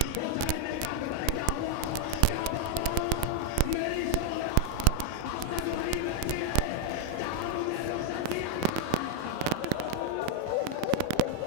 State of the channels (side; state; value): both; different; correlation 0.00